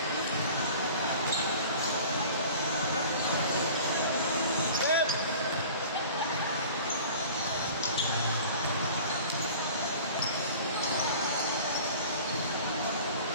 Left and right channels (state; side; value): inverted; both; correlation -0.43